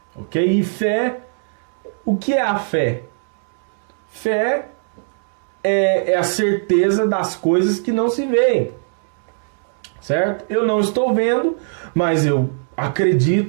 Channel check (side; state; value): left; silent; digital silence